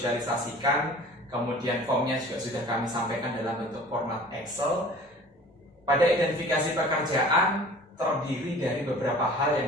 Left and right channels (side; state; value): both; normal; correlation 0.45